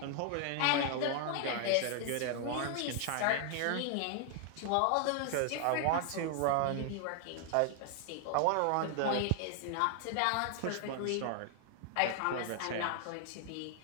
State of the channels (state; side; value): different; both; correlation 0.00